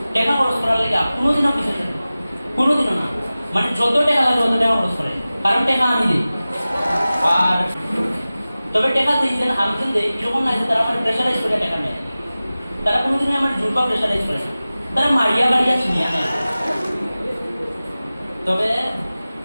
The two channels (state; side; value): inverted; both; correlation -0.96